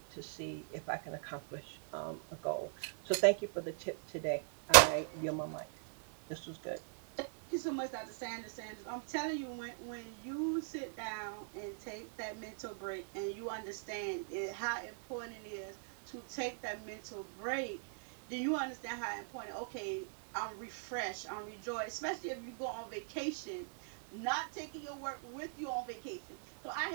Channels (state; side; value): silent; left; digital silence